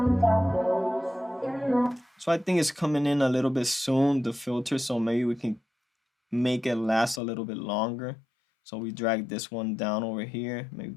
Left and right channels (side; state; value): right; drops out; at 7.2 s